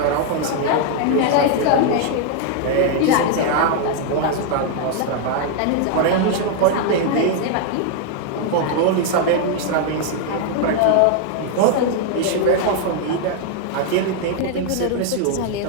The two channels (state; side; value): different; both; correlation 0.00